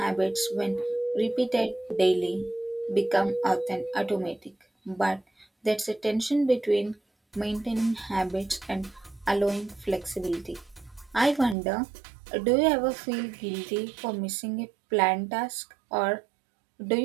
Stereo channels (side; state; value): left; drops out; at 11.6 s